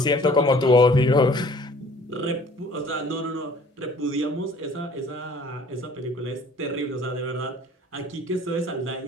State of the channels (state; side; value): normal; both; correlation 0.52